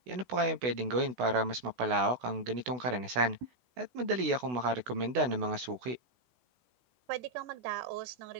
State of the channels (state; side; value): late; left; 16 ms